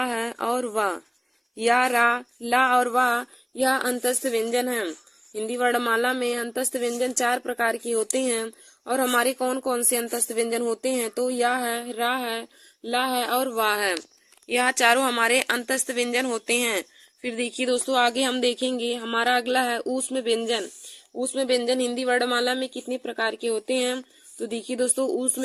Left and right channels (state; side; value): identical; both; correlation 1.00